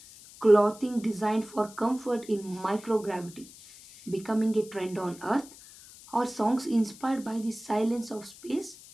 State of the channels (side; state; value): left; noise; hiss, 20 dB below the sound